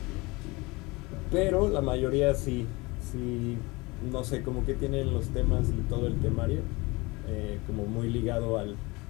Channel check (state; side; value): quieter; right; 24.4 dB